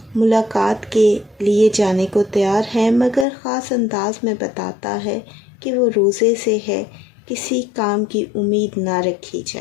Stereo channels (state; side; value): drops out; right; at 3.2 s